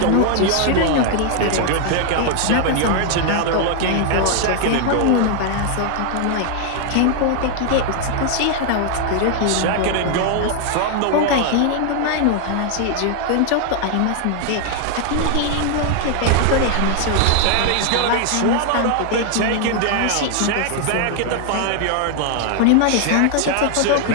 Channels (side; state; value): both; different; correlation 0.00